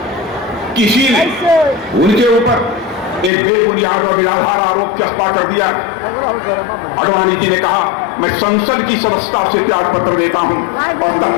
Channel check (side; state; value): right; drops out; at 3.3 s